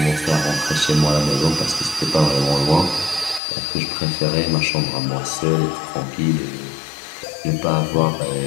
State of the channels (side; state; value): right; drops out; at 3.4 s